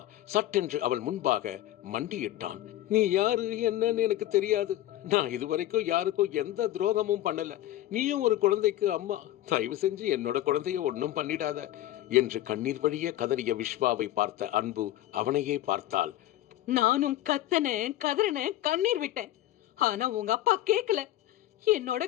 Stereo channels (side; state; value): right; quieter; 14.3 dB